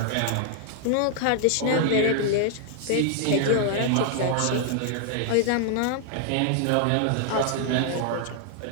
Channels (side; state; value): both; different; correlation 0.00